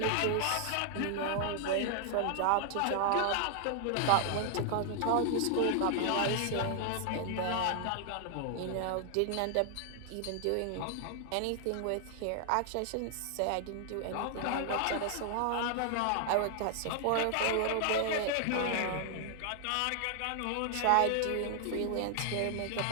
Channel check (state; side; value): different; both; correlation 0.00